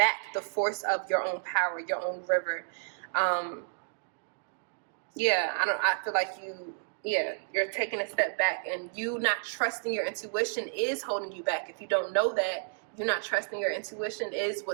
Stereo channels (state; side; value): silent; left; digital silence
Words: the force of your own power, your own river. I feel like you're taking a step back, and you not trusting your intuition is holding you back. If you don't know that, you're not trusting your intuition is